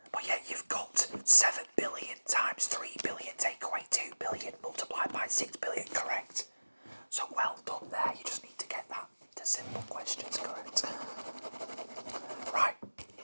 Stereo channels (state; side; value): inverted; both; correlation -1.00